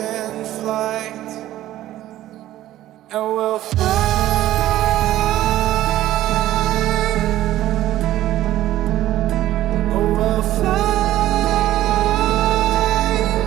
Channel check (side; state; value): left; quieter; 14.1 dB